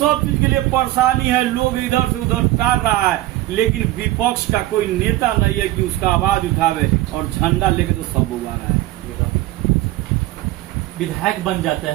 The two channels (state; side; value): quieter; left; 16.3 dB